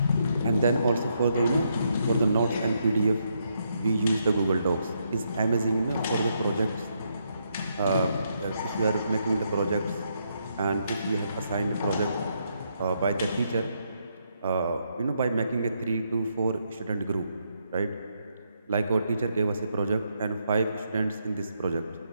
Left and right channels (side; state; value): both; inverted; correlation -0.78